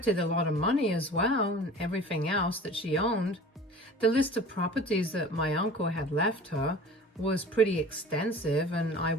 a lot of money as well, and everything else that she owned. The list of properties that my uncle had left her was pretty extensive, and I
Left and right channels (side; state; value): both; normal; correlation 0.41